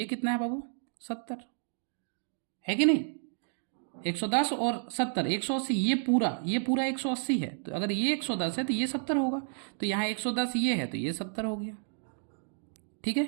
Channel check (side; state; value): left; silent; digital silence